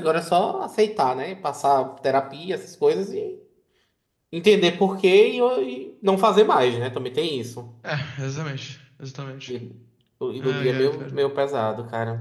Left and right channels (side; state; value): both; identical; correlation 1.00